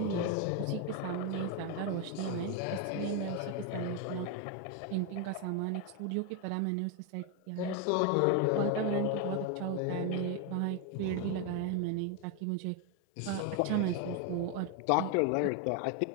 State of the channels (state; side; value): different; both; correlation 0.01